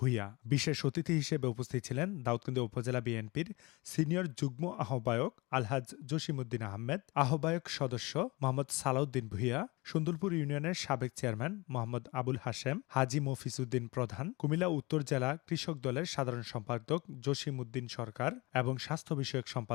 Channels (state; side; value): quieter; right; 24.1 dB